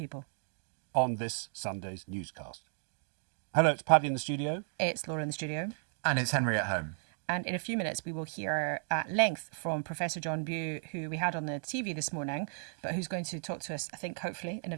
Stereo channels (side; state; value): left; silent; 55 dB below the other